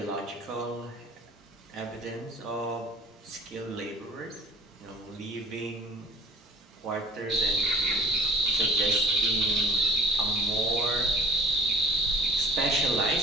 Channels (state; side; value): normal; both; correlation 0.50